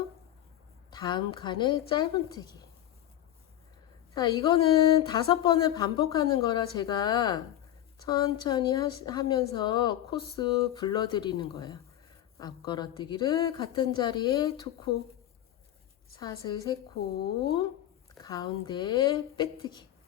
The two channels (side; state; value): right; quieter; 12.4 dB